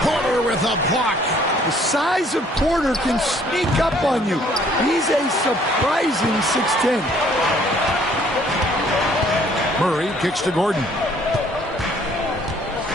Porter with a block. The size of Porter can sneak up on you. He's a surprising 6'10". Murray kicks to Gordon.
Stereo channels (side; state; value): both; normal; correlation 0.60